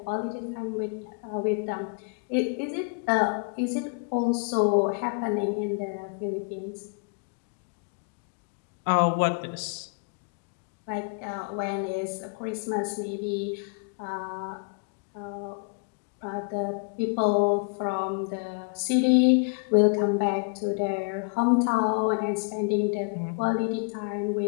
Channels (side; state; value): right; quieter; 37.4 dB